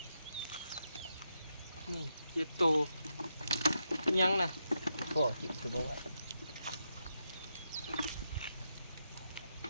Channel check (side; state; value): both; inverted; correlation -0.84